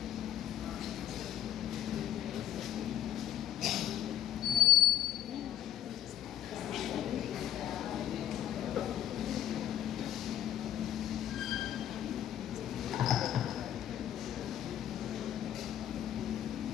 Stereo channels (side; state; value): right; quieter; 11.7 dB